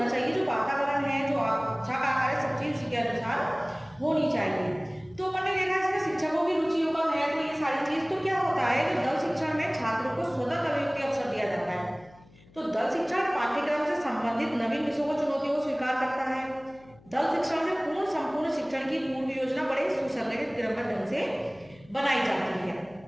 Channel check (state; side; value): noise; left; hum, 26 dB below the sound